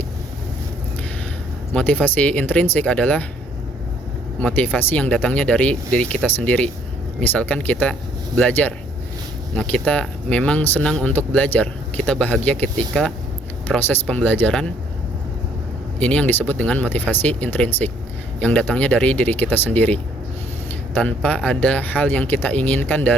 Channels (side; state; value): both; normal; correlation 0.64